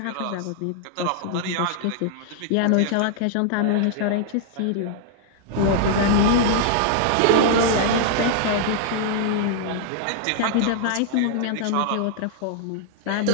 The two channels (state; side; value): different; both; correlation -0.01